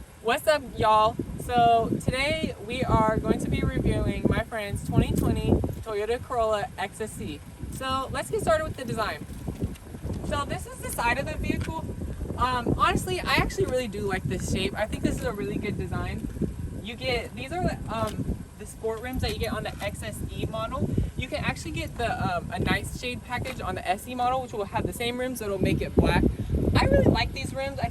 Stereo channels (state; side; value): identical; both; correlation 1.00